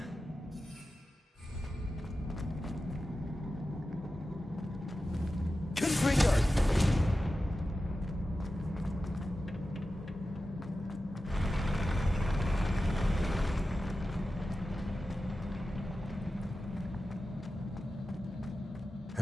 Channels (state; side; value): normal; both; correlation 0.93